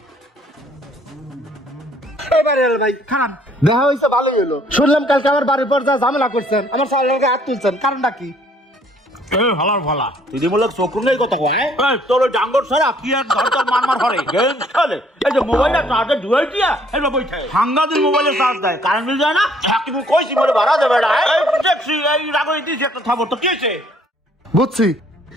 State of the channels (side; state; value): both; normal; correlation 0.62